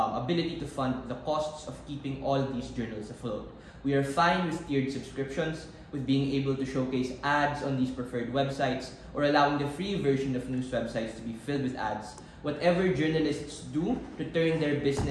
to fund the costs of keeping all these journals afloat. We are fine with tiered subscriptions, with being able to showcase ads on these preferred websites, or allowing the free version of news websites to be filled with ads. Whatever journalists do to turn their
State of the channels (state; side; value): identical; both; correlation 1.00